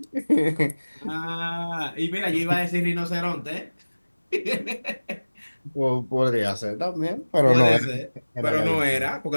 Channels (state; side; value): inverted; both; correlation -1.00